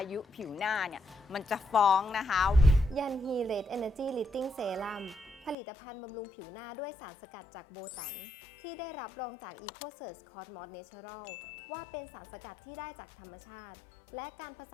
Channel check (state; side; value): drops out; right; at 5.6 s